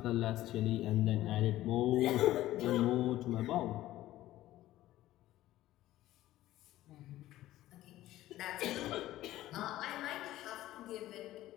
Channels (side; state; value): right; quieter; 15.0 dB